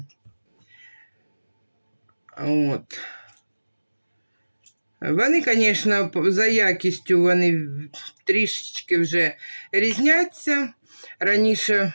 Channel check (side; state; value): both; inverted; correlation -1.00